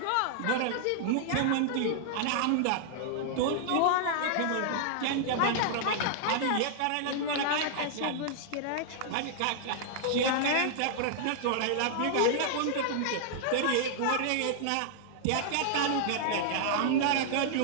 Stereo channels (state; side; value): different; both; correlation -0.01